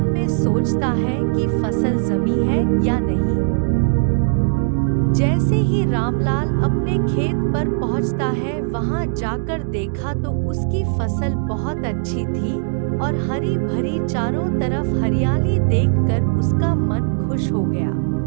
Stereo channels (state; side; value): silent; left; digital silence